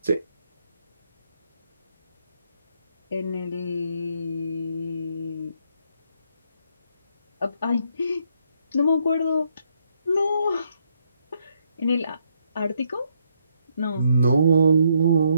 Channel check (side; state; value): both; inverted; correlation -0.74